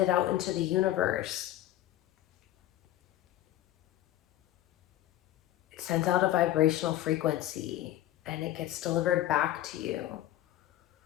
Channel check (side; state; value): right; quieter; 13.6 dB